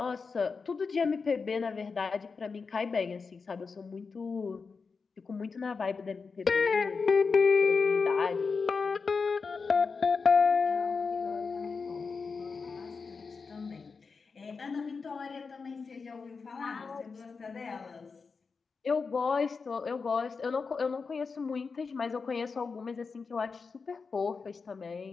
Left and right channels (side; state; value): right; quieter; 4.9 dB